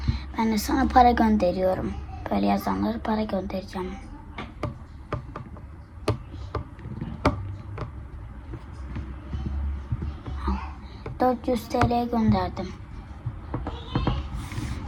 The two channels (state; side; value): identical; both; correlation 1.00